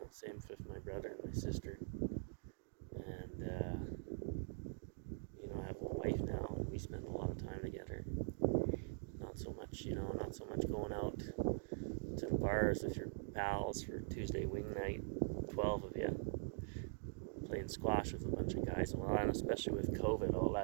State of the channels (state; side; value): silent; left; digital silence